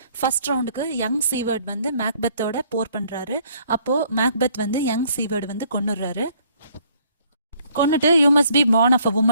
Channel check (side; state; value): both; inverted; correlation -0.63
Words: ஃபர்ஸ்ட் ரவுண்டுக்கு யங் சீவர்ட் வந்து மேக்பெத்தோட போர் பண்றாரு. அப்போ மேக்பெத் வந்து யங் சீவர்ட் வந்து கொன்னுடுறாரு. கொன்னுட்டு you must be born of a